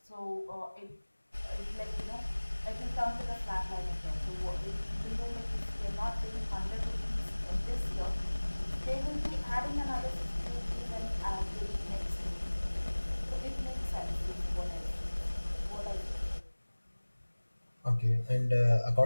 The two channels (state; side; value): inverted; both; correlation -1.00